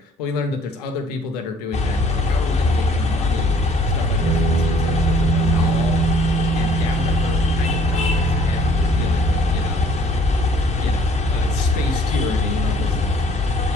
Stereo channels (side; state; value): both; normal; correlation 0.58